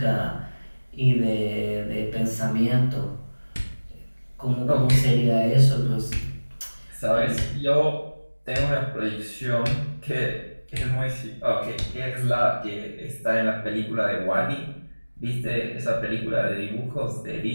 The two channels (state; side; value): inverted; both; correlation -1.00